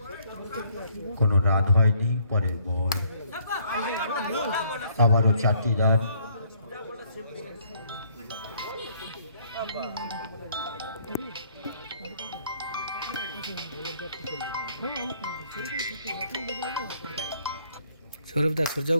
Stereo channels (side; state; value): both; inverted; correlation -0.65